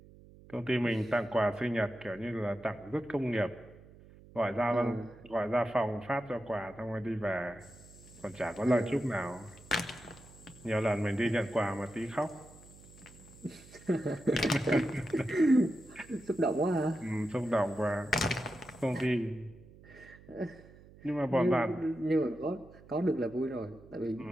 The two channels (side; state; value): right; noise; hum, 22 dB below the sound